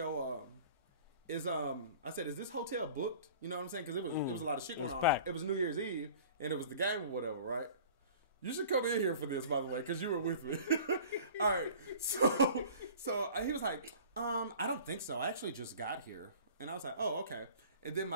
I said, is this hotel booked? You know what I'm saying? Because it was a lot of shit going on. Packed. It was New Year's Eve and it was the game or whatever, right? You should come in here for this, by the way, because you were with me. All right. So he was like, I don't think so. I actually just got here. And I was like, oh, okay. And then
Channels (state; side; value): inverted; both; correlation -0.45